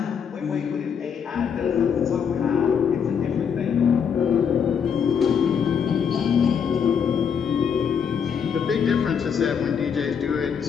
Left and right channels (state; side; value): quieter; right; 7.1 dB